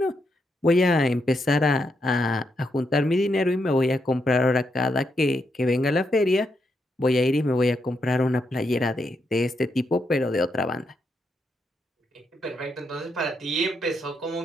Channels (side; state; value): both; normal; correlation 0.80